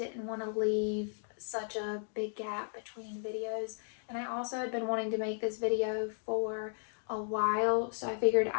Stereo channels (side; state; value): right; silent; digital silence